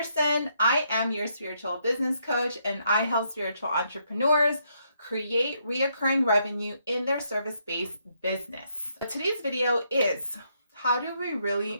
I am your spiritual business coach, and I help spiritual entrepreneurs create reoccurring revenue in their service-based business. Today's video is how do we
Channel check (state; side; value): inverted; both; correlation -0.75